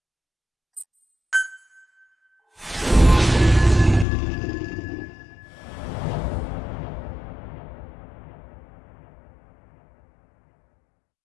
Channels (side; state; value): right; drops out; at 4.0 s